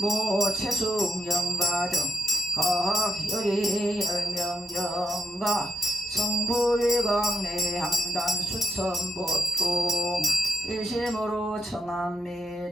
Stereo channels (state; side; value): normal; both; correlation 0.81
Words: 모채숙영가 등 각열이 열명영가 성불강내 항단 수천보통 일심으로